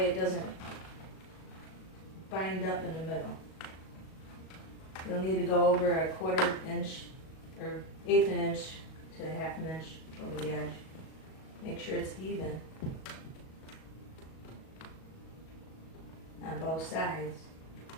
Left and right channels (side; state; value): right; late; 37 ms